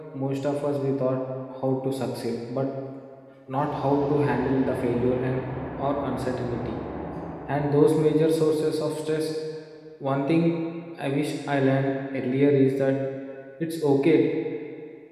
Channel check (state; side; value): identical; both; correlation 1.00